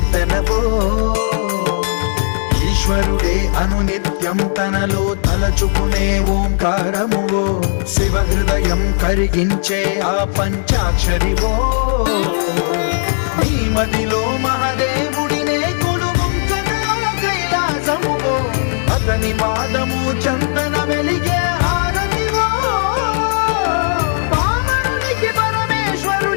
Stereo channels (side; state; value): right; silent; 69 dB below the other